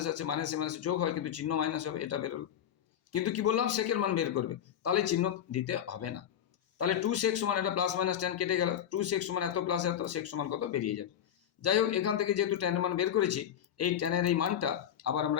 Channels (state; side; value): quieter; right; 9.8 dB